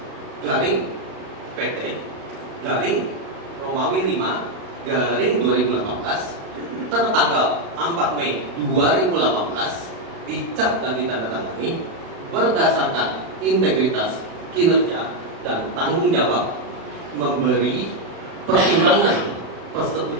garing PT garing Romawi 5 garing 2018 tertanggal 4 Mei 2018 dicap dan ditandatangani berdasarkan integritas kinerja dan tanggung jawab memberi pertimbangan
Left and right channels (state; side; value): late; left; 35 ms